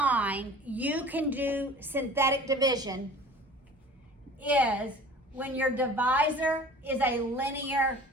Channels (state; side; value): normal; both; correlation 0.44